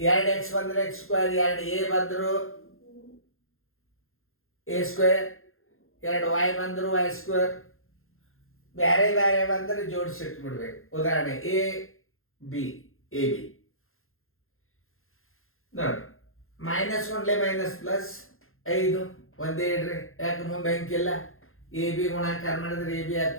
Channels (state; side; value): late; right; 0.61 ms